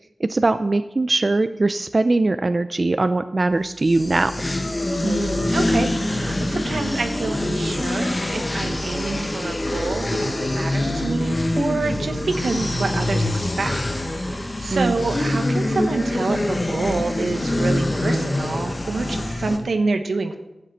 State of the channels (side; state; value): both; normal; correlation 0.96